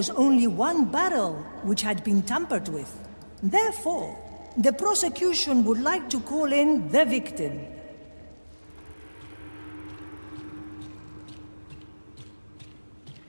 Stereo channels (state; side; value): inverted; both; correlation -1.00